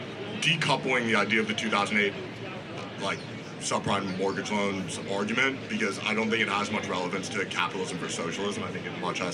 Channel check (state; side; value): identical; both; correlation 1.00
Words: decoupling the idea of the 2008 subprime mortgage loans argument, because I don't think it has much relevance to capitalism versus socialism. I think it much